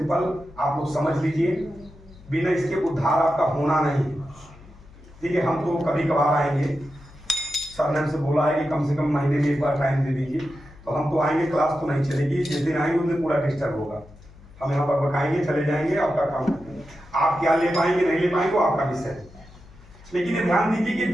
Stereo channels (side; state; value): left; noise; hum, 22 dB below the sound